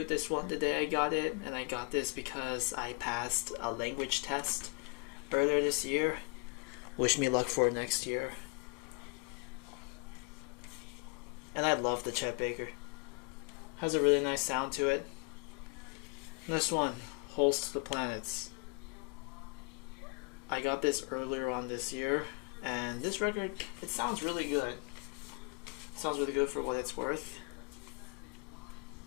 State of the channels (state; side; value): quieter; right; 33.8 dB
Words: this one the day I got it, and I got this because I passed a language test earlier this year. Wish me luck for next year. And I love the Chet Baker. Has a really nice sound to it. Next one, Holes to the Planets. I got this earlier on this year, and this record, it sounds really good. It sounds really good for what it's worth.